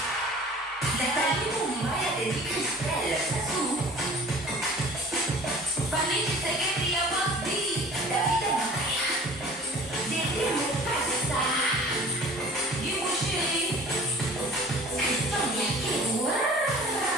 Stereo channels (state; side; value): normal; both; correlation 0.45